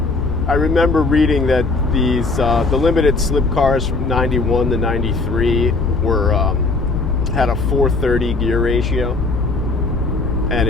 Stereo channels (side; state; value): right; quieter; 3.6 dB